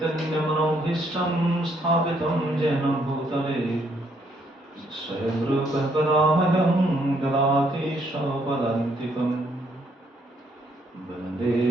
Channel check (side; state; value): both; normal; correlation 0.70